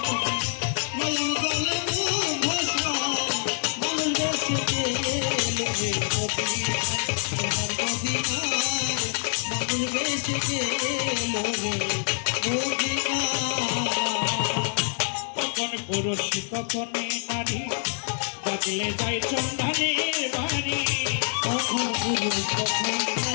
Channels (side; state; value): right; silent; 61 dB below the other